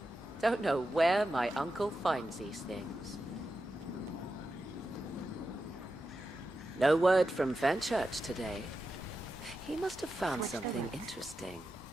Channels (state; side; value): normal; both; correlation 0.90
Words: Don't know where my uncle finds these things. No word from Fenchurch today. He must have found Switch the something routes. interesting.